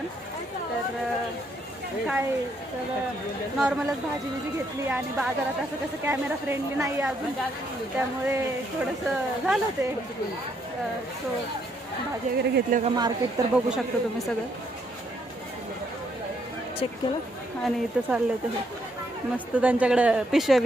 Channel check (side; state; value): both; normal; correlation 0.73